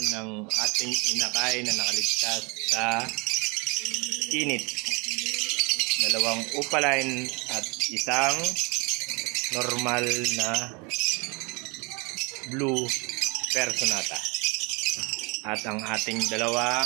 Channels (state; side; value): quieter; left; 29.6 dB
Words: ng ating inakay na nakaligtas sa init. 2 Opaline at isang normal na blue Personata. At ang ating 2